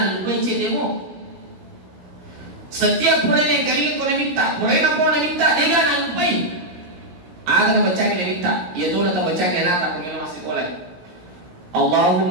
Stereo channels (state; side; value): late; left; 17 ms